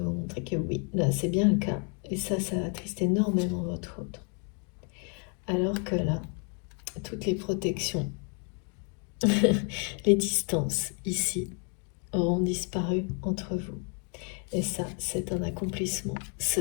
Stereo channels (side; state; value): right; quieter; 39.2 dB